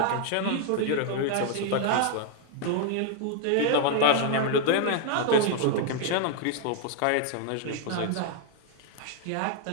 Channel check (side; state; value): both; different; correlation 0.00